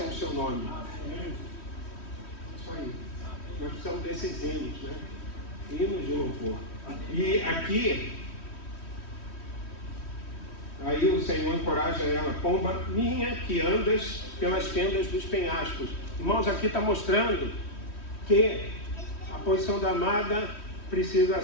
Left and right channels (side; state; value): right; late; 3.1 ms